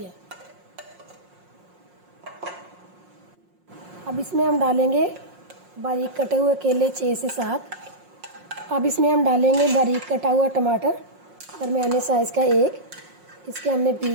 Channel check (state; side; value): late; left; 5.6 ms